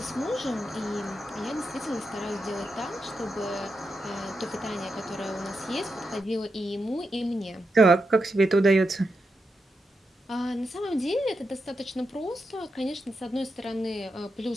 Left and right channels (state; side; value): normal; both; correlation 0.86